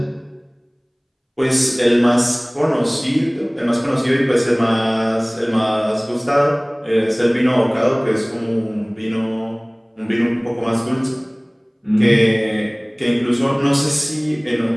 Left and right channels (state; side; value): identical; both; correlation 1.00